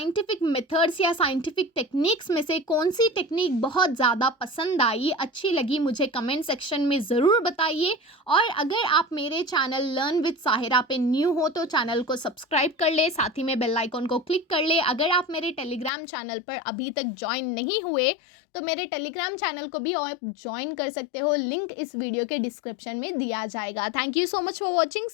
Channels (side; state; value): right; drops out; at 15.9 s